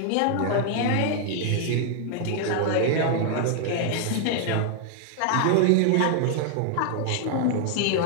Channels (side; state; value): both; different; correlation 0.00